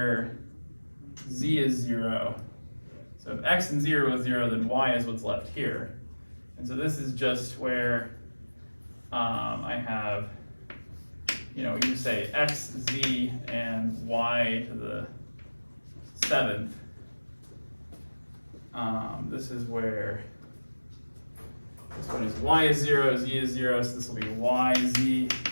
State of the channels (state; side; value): inverted; both; correlation -1.00